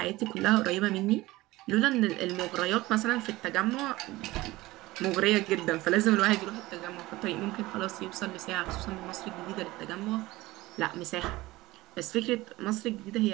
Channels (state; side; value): quieter; left; 18.9 dB